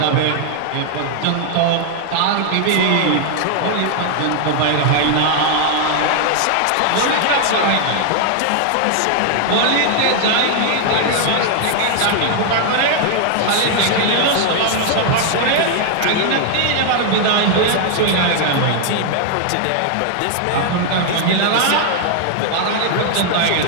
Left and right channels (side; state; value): both; different; correlation 0.00